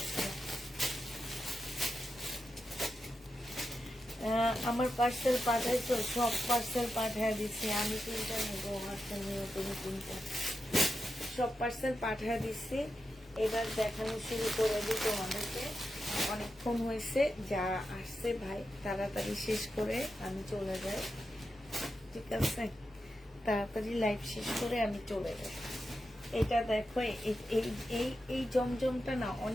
আমার পার্সেল পাঠাইছো, সব পার্সেল পাঠায় দিচ্ছি। আমি 3টা নেবো, পার্সেল নিয়ে তুমি 3টা, সব পার্সেল পাঠায় দিচ্ছি। এবার দেখানো শুরু করে দিই তোমাদেরকে। অনেকক্ষণ হয়েছে, যারা আসছে ভাই তাড়াতাড়ি শেষ করে আমি চলে যাই, ঠিক আছে? তাড়াতাড়ি লাইভ শেষ করে আমি চলে যাই। এটা দেখো, এই জমজমটা না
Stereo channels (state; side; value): normal; both; correlation 0.89